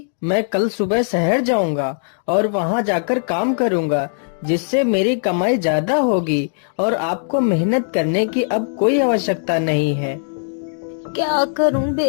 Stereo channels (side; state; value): right; silent; digital silence